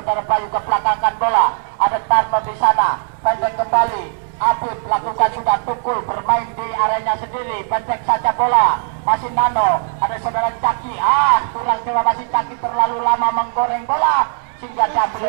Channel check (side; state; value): left; silent; 61 dB below the other